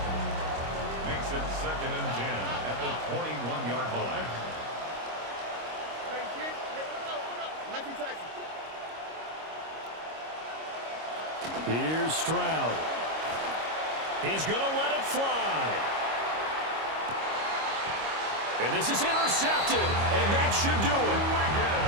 Makes it 2nd and 10 at the 21-yard line. Here's Stroud. He's going to let it fly. And this is intercepted, and that should do it.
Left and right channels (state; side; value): late; left; 25 ms